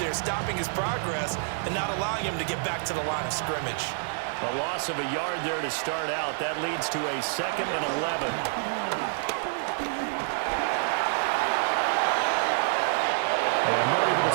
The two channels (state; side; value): silent; left; digital silence